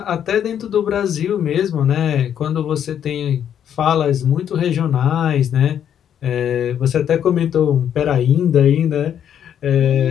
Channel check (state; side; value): quieter; right; 9.3 dB